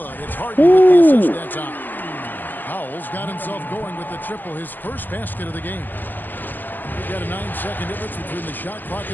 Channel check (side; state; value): right; late; 0.087 ms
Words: It's Harden with the assist that time. Powell's got himself going with the triple, his first basket of the game. We've got a 9-second difference between the shot clock